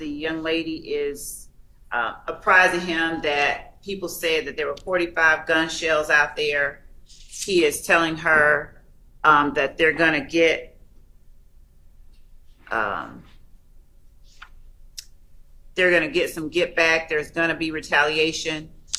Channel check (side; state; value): both; identical; correlation 1.00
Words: young lady is apprising him that people said that there were 45 gun shells out there. He is telling her that they're going to get some get back. There's going to be retaliation.